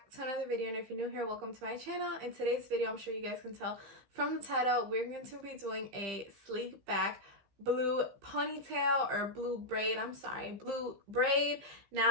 to another video, and if you're new here, welcome to my channel. In today's video, I'm sure you guys can tell from the title, we're going to be doing a sleek back blue ponytail or blue braid. Blue braid.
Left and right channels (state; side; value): late; left; 15 ms